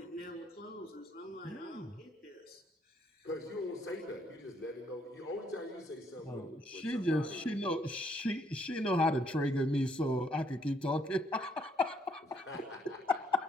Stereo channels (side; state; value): both; normal; correlation 0.69